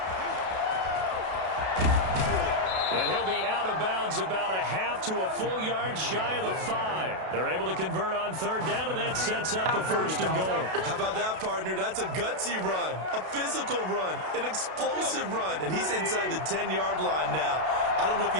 And he'll be out of bounds about a half to a full yard shy of the 5. They're able to convert on 3rd down, and that sets up a 1st and goal. How about that, partner? That's a gutsy run, a physical run, an explosive run, and he's inside the 10-yard line now. I don't know if you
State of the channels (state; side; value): late; left; 32 ms